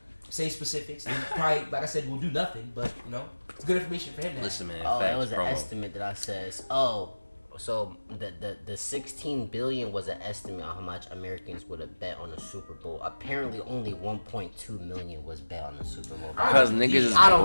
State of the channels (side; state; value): both; inverted; correlation -1.00